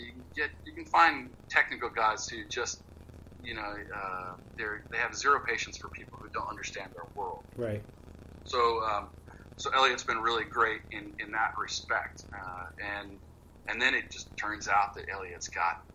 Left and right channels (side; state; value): both; identical; correlation 1.00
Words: can find technical guys who just, they have zero patience for people who don't understand their world. Right. So Elliot's been really great in that respect. And then it just turns out that Elliot's got